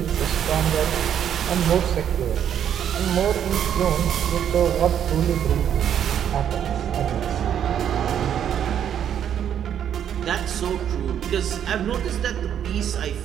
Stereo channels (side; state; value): left; quieter; 9.4 dB